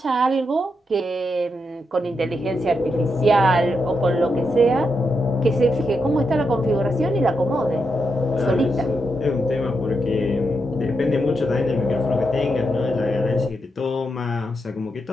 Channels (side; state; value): both; normal; correlation 0.84